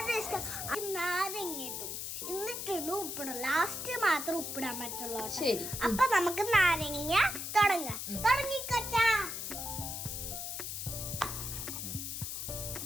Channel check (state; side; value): noise; left; hiss, 5 dB below the sound